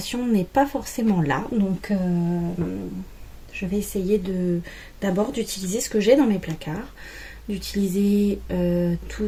n'est pas forcément là, donc je vais essayer d'abord d'utiliser ce que j'ai dans mes placards, d'utiliser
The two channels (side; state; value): both; identical; correlation 1.00